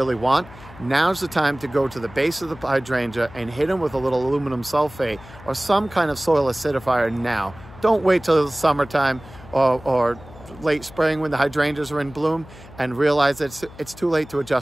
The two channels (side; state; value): left; noise; hum, 19 dB below the sound